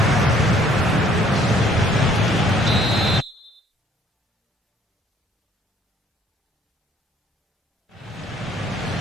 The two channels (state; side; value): normal; both; correlation 0.61